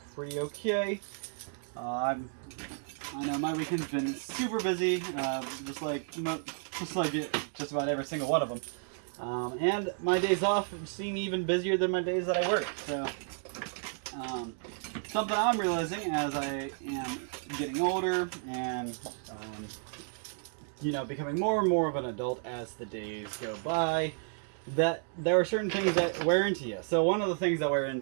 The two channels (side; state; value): left; silent; 56 dB below the other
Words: pretty okay. I know my weekend's been super busy, just like just about every single one of them. And my days off seem even busier than my days that I work. So something I'm realizing as I am getting older and becoming more and more of an adult as the days go by, that there are certain things that wear into you. So one of the things that wear